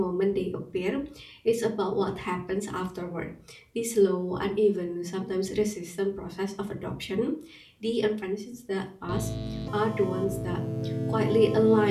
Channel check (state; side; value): identical; both; correlation 1.00